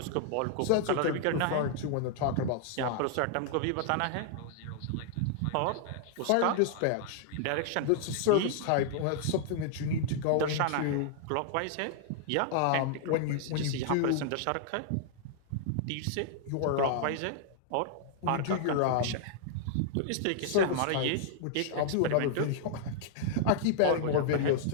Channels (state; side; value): different; both; correlation -0.01